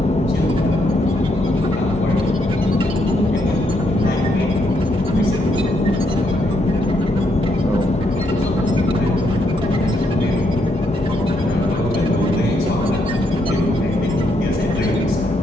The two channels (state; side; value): normal; both; correlation 0.76